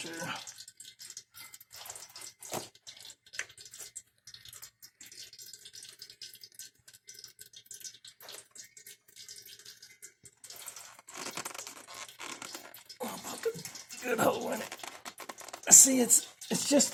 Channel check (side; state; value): both; identical; correlation 1.00